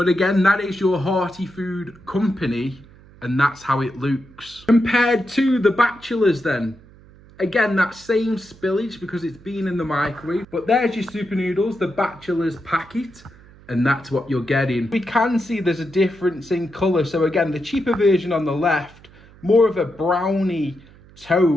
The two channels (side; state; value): right; noise; hum, 24 dB below the sound